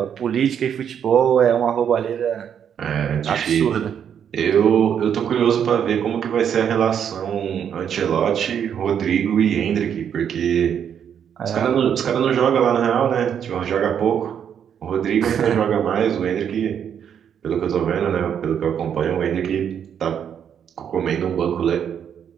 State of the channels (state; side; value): quieter; left; 8.4 dB